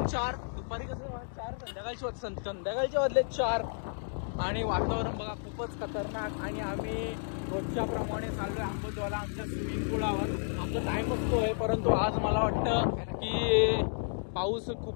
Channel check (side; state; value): right; silent; digital silence